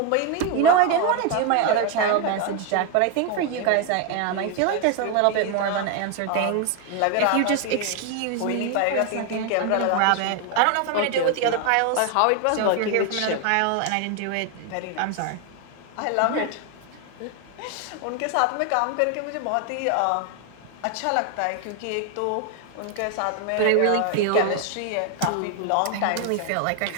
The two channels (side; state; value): both; different; correlation 0.01